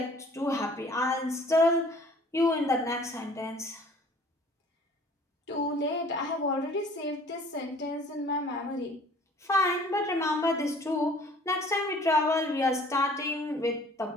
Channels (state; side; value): normal; both; correlation 0.52